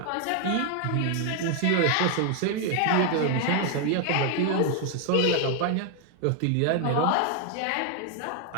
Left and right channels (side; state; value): both; different; correlation 0.00